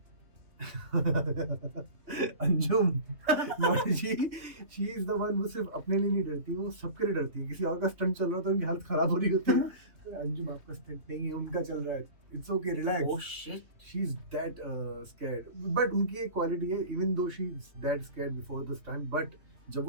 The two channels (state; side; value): late; left; 3.0 ms